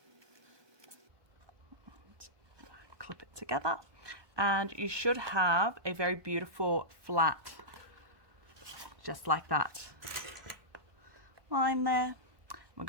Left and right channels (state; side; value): late; left; 1.2 ms